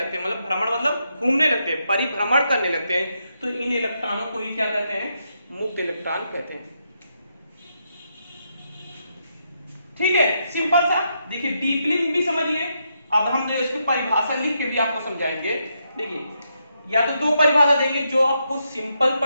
हैं। मतलब भ्रमण मतलब घूमने लगते हैं, परिभ्रमण करने लगते हैं। तो इन इलेक्ट्रॉनों को ही क्या कहते हैं, मुक्त इलेक्ट्रॉन कहते हैं। ठीक है, सिंपल सा। देखिए डीपली भी समझिए। अब हम इसकी परिभाषा लिख के भी आपको समझाएंगे। देखिए या तो 2 परिभाषा देंगे, जो आपको सिंपल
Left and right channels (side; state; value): both; inverted; correlation -0.81